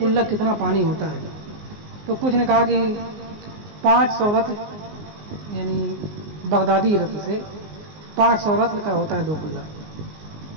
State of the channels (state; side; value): late; left; 19 ms